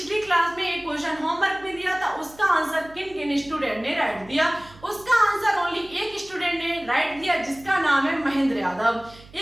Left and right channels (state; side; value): noise; right; hum, 22 dB below the sound